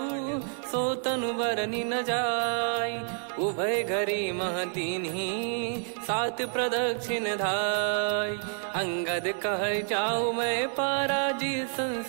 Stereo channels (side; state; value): left; silent; 59 dB below the other